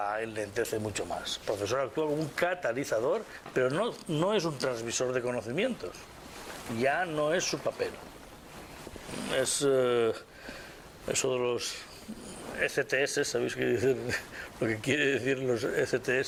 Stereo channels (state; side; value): identical; both; correlation 1.00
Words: enlentece mucho más. El profesor actúa como un catalizador, pero no es un transmisor de conocimientos. Ya no es su papel. Es eso de los ECTS, ¿sabéis qué dicen? Lo que quiere decir los